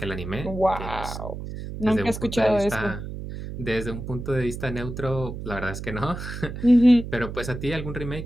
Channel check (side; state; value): right; noise; hum, 8 dB below the sound